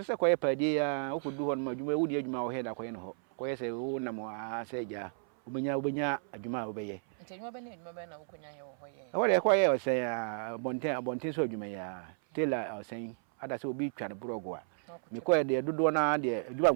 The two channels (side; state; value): left; silent; 56 dB below the other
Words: se ko ye padi ya o ko du ho no adwuma e wudi adwuma wo he da ko ye no ho ko ye se wo na mo a se ja ubenya adwuma wo be ye nti adwuma be ne adwuma be na wo konya ye ho ye wo de ko ye o se ya bonten so adwuma ya tela o sen ada se obi twa ne brogo a ko ye de dodo na de